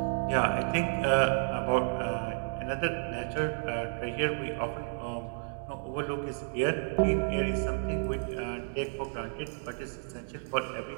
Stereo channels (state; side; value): silent; left; digital silence